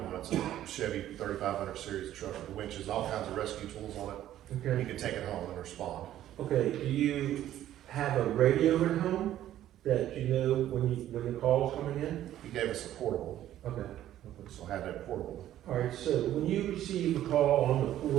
It's a Chevy 3500 series truck with winches, all kinds of rescue tools on it. Okay. You can take it home and respond. Okay, do you have a radio at home that you know when the call's coming in? He gave us a portable, Okay. so I had that portable. All right, so when you receive a call on the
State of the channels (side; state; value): left; quieter; 12.5 dB